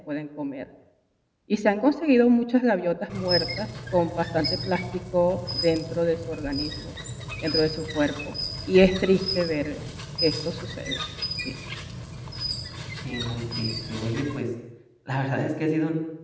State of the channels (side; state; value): both; identical; correlation 1.00